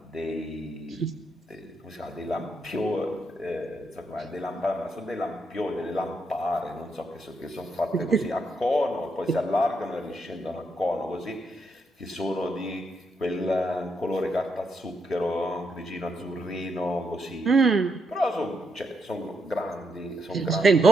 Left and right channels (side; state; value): both; normal; correlation 0.79